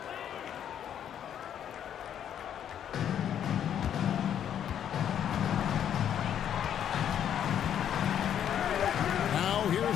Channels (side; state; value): right; quieter; 9.6 dB